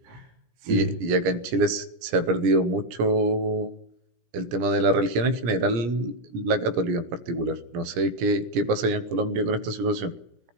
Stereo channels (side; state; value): left; late; 17 ms